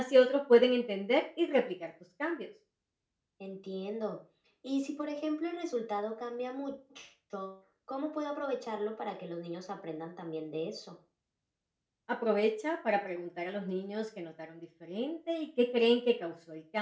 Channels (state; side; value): identical; both; correlation 1.00